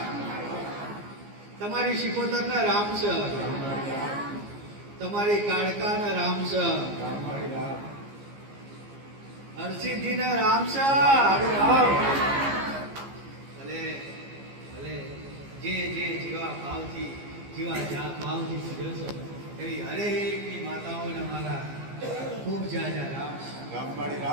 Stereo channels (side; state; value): left; late; 15 ms